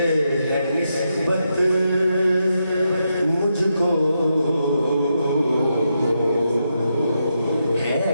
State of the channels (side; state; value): both; inverted; correlation -0.84